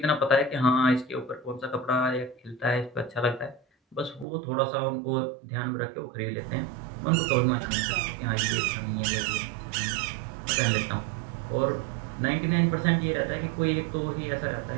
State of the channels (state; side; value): drops out; left; at 4.2 s